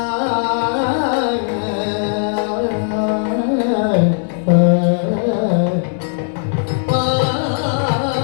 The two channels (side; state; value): right; silent; digital silence